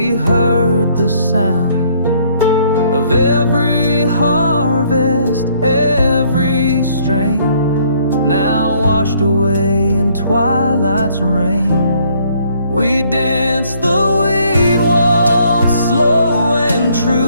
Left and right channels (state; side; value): inverted; both; correlation -0.65